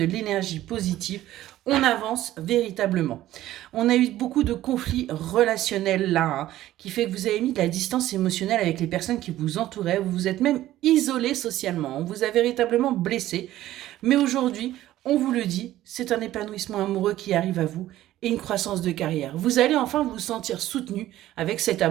l'énergie positive. On avance véritablement. On a eu beaucoup de conflits relationnels là, hein, qui fait que vous avez mis de la distance émotionnelle avec les personnes qui vous entouraient. Vous vous êtes même isolé socialement. On vous a véritablement blessé. Mais aujourd'hui, on vous le dit, c'est un épanouissement amoureux qui arrive à vous et une croissance de carrière. Vous allez enfin vous sentir soutenu avec cet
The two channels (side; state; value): left; quieter; 14.3 dB